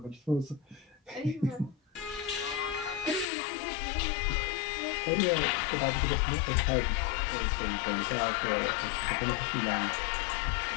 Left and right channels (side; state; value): right; drops out; at 3.2 s